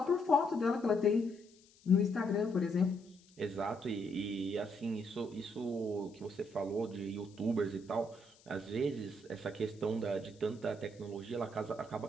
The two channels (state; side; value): noise; left; hiss, 28 dB below the sound